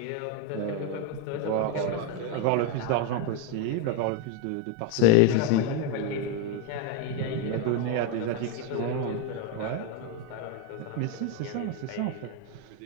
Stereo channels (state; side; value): different; both; correlation 0.02